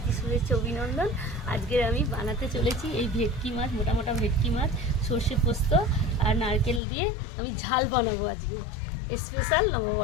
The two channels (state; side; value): drops out; right; at 6.8 s